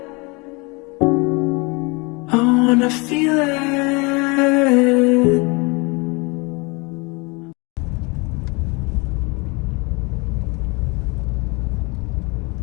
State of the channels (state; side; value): quieter; right; 28.3 dB